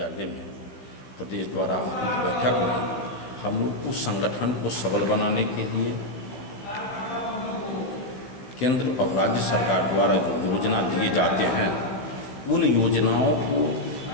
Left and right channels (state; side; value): late; right; 15 ms